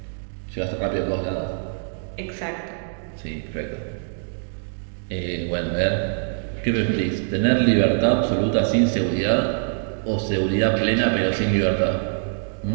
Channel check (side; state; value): left; silent; digital silence